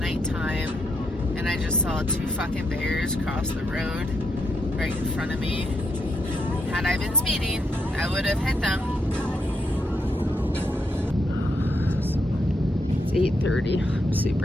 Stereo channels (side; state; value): both; normal; correlation 0.79